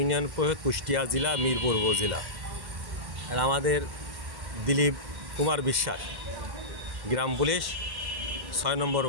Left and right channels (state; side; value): late; left; 1.1 ms